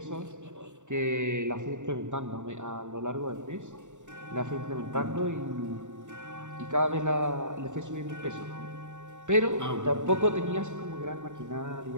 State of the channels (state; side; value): late; left; 0.85 ms